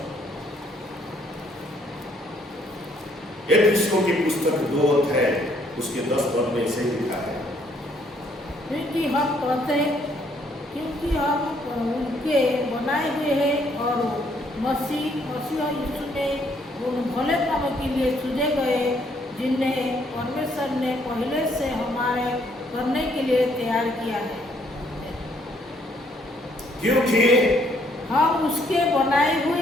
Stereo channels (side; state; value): both; normal; correlation 0.67